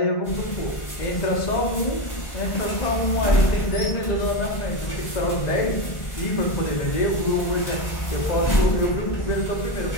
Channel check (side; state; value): right; late; 1.5 ms